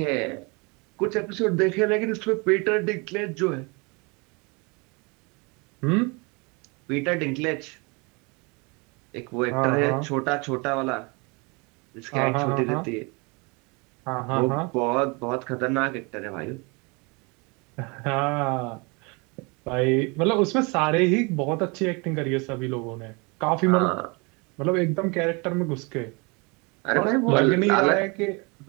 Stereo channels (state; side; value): quieter; left; 29.6 dB